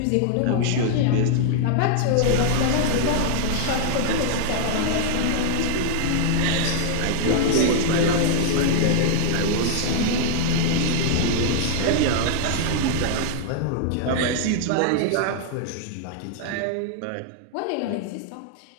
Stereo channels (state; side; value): different; both; correlation -0.01